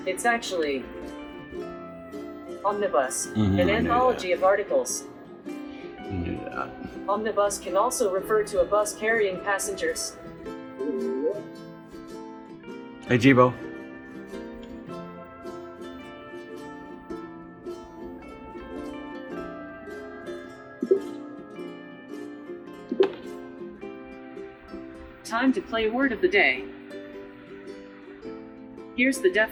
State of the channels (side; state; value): both; identical; correlation 1.00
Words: It's actually omnibus, an anthology of articles. You knew that. Omnibus can also refer to a bus carrying passengers. Hey, Jibo. Time to play word of the day. Here's the